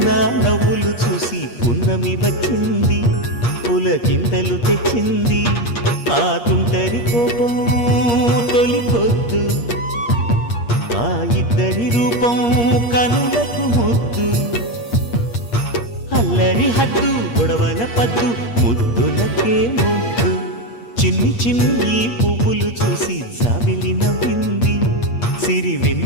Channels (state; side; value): late; right; 8.5 ms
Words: నవ్వులు చూసి పున్నమి వచ్చింది పులకింతలు తెచ్చింది ఆ తుంటరి కోపం తొలి పొద్దు ఆ ఇద్దరి రూపం కనులకు ముద్దు అల్లరి హద్దు గొడవల పద్దు ముద్దులకే ముద్దు చిన్ని చిన్ని పువ్వులు చూసి జాబిలి నవ్వింది సిరి